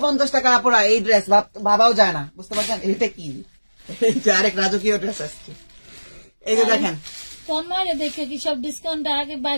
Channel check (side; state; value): both; inverted; correlation -1.00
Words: টাকা আপুরা এই ড্রেস ভাবাও যায় না, বুঝতে পারছেন? এটা কি, এই যে আরেক রাজকীয় ড্রেস আসছে, এই যে দেখেন। তন্ময় দেখে কি সব ডিসকাউন্ট আগে